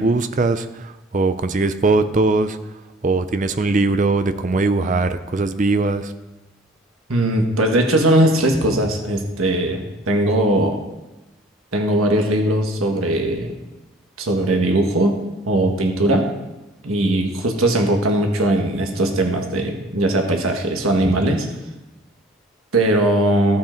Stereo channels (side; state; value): both; normal; correlation 0.51